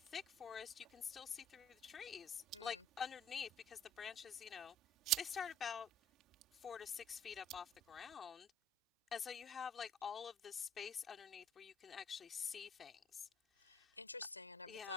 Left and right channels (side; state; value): both; normal; correlation 0.57